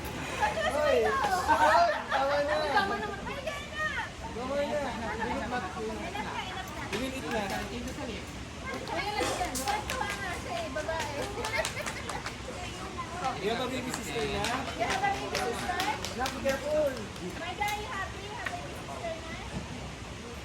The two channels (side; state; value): both; identical; correlation 1.00